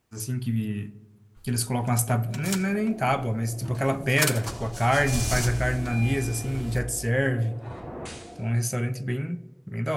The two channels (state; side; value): identical; both; correlation 1.00